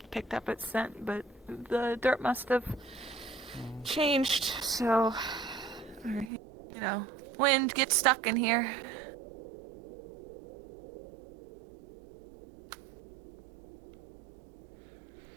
Picked up its scent, but the dirt must have changed, so, you know, wind gets stuck in here.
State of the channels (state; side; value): drops out; left; at 6.3 s